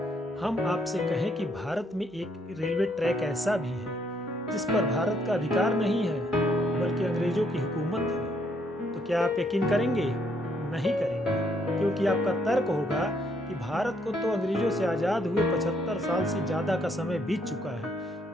हम आपसे कहें कि भारत में एक रेलवे ट्रैक ऐसा भी है जिस पर भारत का अधिकार नहीं है बल्कि अंग्रेजों की हुकूमत है, तो क्या आप यकीन करेंगे? नहीं करेंगे, क्योंकि आपका तर्क होगा कि भारत को तो अंग्रेजों से आज़ाद हुए 75 साल से ज़्यादा का समय बीत चुका है,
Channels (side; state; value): both; normal; correlation 0.71